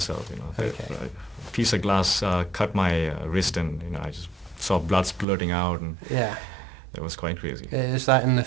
Okay. A piece of glass cut my wrist, and I just saw blood splurting out, and it was quite crazy. Is that in the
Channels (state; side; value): drops out; left; at 5.2 s